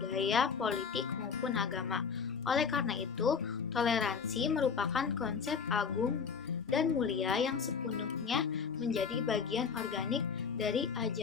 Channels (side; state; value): right; quieter; 6.0 dB